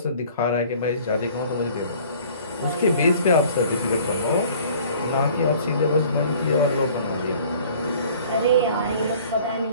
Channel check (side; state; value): both; inverted; correlation -0.51